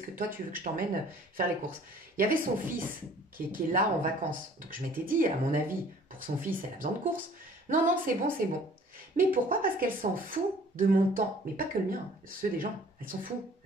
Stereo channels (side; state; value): both; normal; correlation 0.53